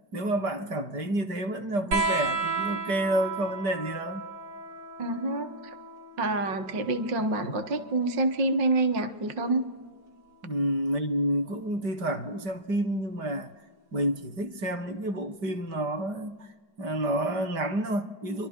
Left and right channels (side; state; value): left; late; 5.1 ms